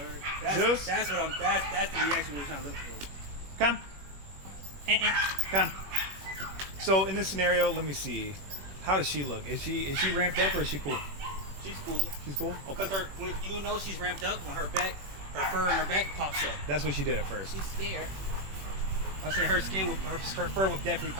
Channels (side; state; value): left; late; 21 ms